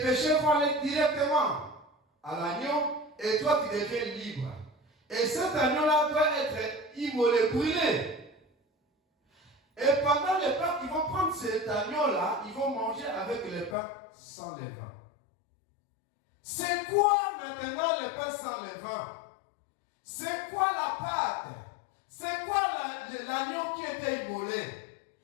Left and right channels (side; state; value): right; drops out; at 13.8 s